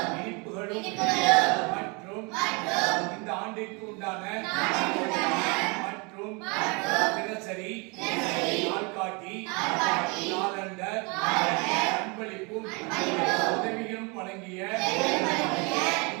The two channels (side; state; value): left; quieter; 30.2 dB